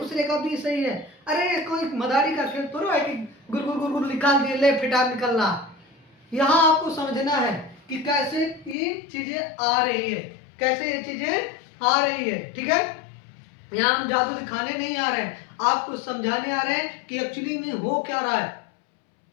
का भी सही है, अरे कोई मदारी का खेल थोड़ा है कि गुर गुर गुर गुर निकाल दिए, ले फिटा निकलना। यहाँ आपको समझना है कि कैसे ये चीजें आ रही है, कैसे ये चीजें आ रही है। ठीक है, यहाँ हम जादू दिखाने नहीं आ रहे हैं, आपको समझाने आ रहे हैं कि एक्चुअली में हो क्या रहा है।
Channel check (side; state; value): right; drops out; at 8.8 s